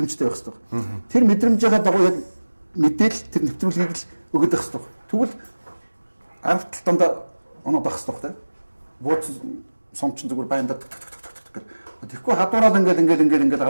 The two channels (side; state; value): both; inverted; correlation -1.00